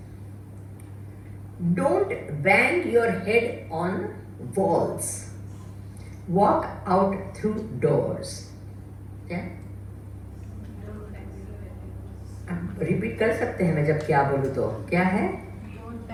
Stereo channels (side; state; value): both; identical; correlation 1.00